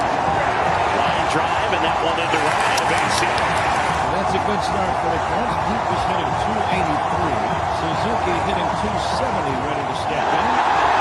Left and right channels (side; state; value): both; identical; correlation 1.00